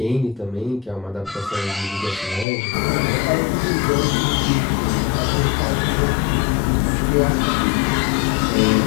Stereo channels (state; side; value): drops out; right; at 2.5 s